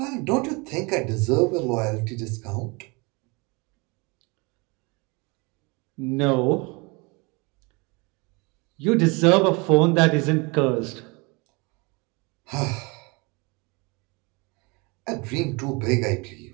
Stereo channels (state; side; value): quieter; left; 28.2 dB